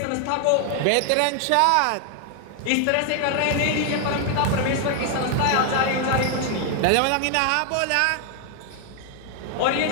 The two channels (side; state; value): both; different; correlation 0.00